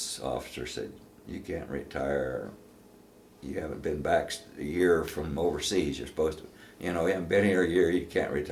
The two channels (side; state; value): both; identical; correlation 1.00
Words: officer said, "You can't retire. You haven't been back a year from overseas. You're supposed to, you haven't been here a year. You can't